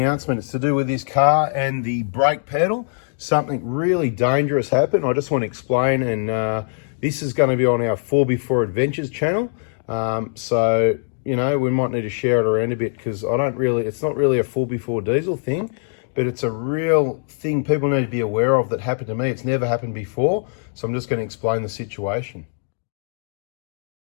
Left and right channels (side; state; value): right; silent; digital silence